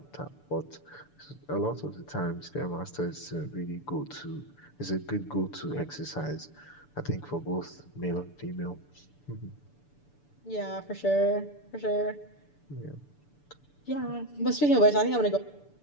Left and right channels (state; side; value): late; right; 6.9 ms